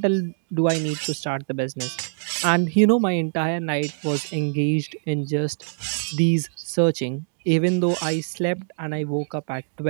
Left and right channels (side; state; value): left; silent; digital silence